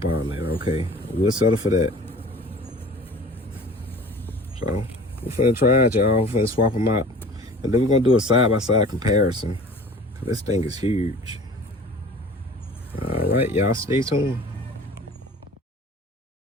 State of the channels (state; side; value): normal; both; correlation 0.43